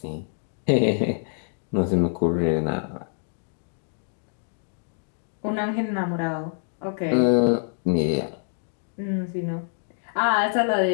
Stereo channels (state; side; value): silent; right; digital silence